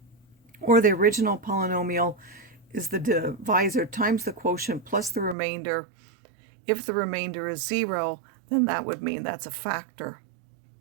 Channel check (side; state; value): left; drops out; at 5.4 s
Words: or the original polynomial is the divisor times the quotient plus the remainder. If the remainder is 0, then that would mean that's a factor.